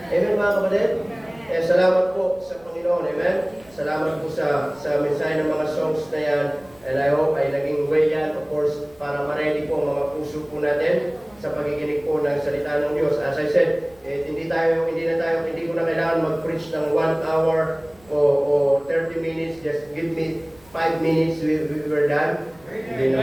Amen mga kapatid? Salamat po sa Panginoon. Amen? Salamat po sa mensahe ng mga songs na yan. And I hope ay naging way yan, of course, para ma-ready po ang mga puso po natin sa pakikinig po ng salita ng Diyos. As I said, hindi ko na kailangan mag-preach ng 1 hour o 30 minutes. Just give me 5 minutes, we're done. Hindi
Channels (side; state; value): right; noise; rumble, 28 dB below the sound